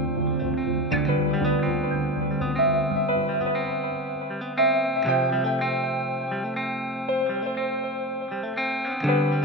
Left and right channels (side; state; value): both; normal; correlation 0.28